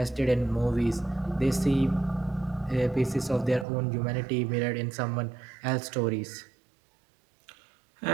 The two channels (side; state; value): left; drops out; at 3.7 s